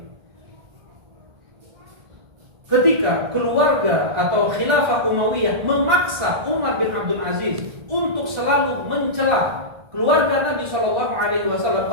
Ketika keluarga atau khilafah Umayyah memaksa Umar bin Abdul Aziz untuk selalu mencela keluarga Nabi Shallallahu Alaihi Wasallam,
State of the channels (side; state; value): left; late; 1.6 ms